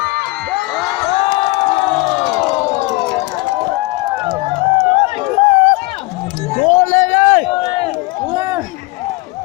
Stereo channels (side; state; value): right; quieter; 23.0 dB